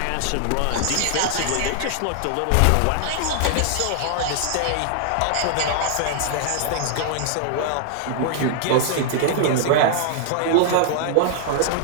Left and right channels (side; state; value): both; different; correlation -0.01